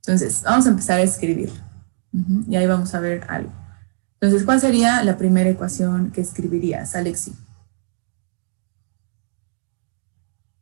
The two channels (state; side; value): silent; left; 63 dB below the other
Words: vamos a empezar a escribir. Y ahí vamos a ver algo. Entonces, ¿cuál sería la primera ecuación que escribirías, Alexi?